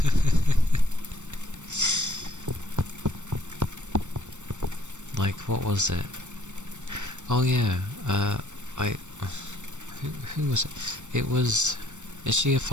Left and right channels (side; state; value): left; late; 0.84 ms